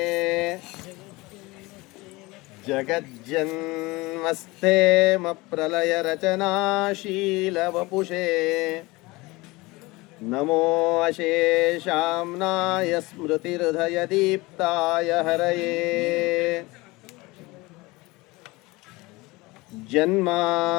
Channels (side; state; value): right; quieter; 22.5 dB